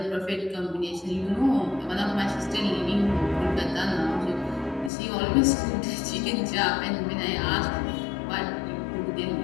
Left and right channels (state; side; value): drops out; right; at 4.9 s